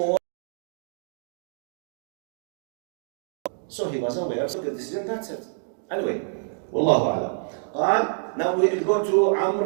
So he was aware of the decision, that's it. Anyway, Wallahu a'lam. Now we will go to Amr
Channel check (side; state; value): left; silent; digital silence